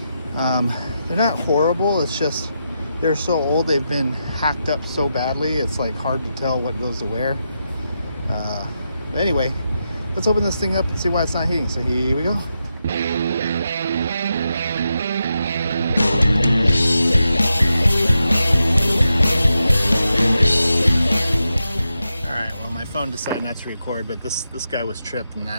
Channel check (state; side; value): inverted; both; correlation -0.86